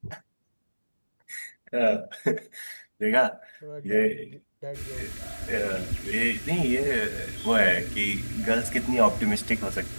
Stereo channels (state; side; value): inverted; both; correlation -1.00